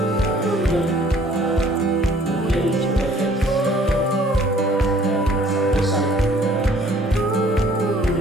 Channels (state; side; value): normal; both; correlation 0.57